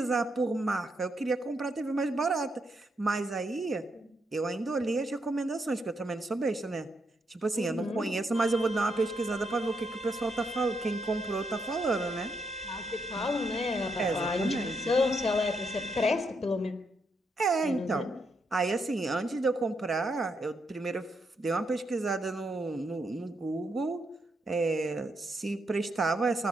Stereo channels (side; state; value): both; normal; correlation 0.79